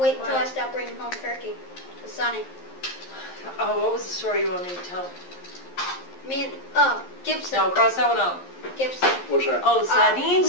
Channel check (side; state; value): right; late; 11 ms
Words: until I stop bringing home turkey. It's Sonny. Oh, what was the story you want me to tell? Me and, Gibson. No, cross that one out. Gibson. What's that? Oh, the sardine